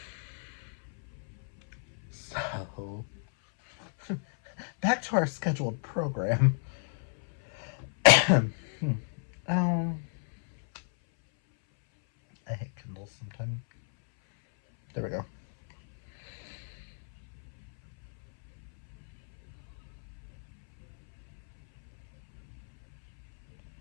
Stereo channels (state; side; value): silent; right; 57 dB below the other